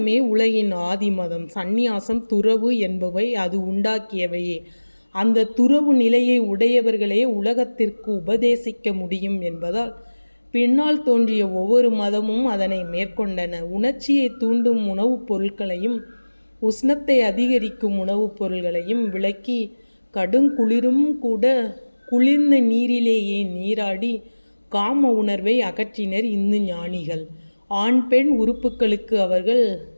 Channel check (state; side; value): inverted; both; correlation -1.00